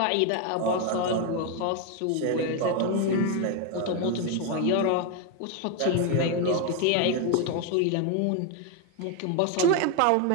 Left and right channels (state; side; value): different; both; correlation 0.01